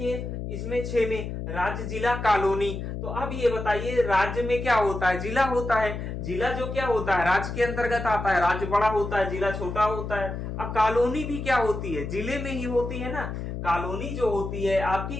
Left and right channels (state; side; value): noise; left; hum, 6 dB below the sound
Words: इसमें 6 में राज्य, जिला, कॉलोनी। तो अब ये बताइए, राज्य में क्या होता है, जिला होता है। जिला जो क्या होता है, राज्य के अंतर्गत आता है, राज्य बड़ा होता है, जिला छोटा होता है। अब कॉलोनी भी क्या होती है, जिले में ही होती है ना। कॉलोनी जो होती है आपकी